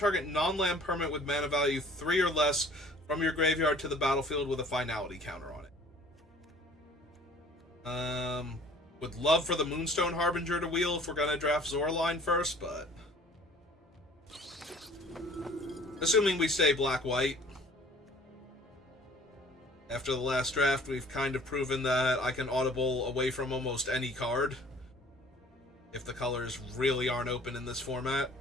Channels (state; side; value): normal; both; correlation 0.51